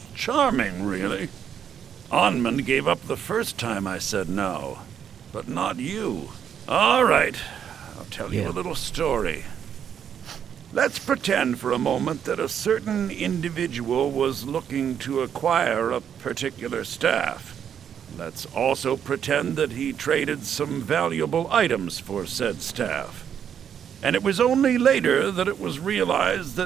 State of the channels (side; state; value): left; quieter; 8.5 dB